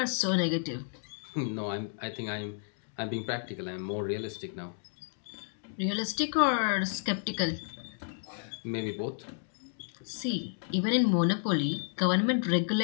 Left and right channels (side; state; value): right; silent; digital silence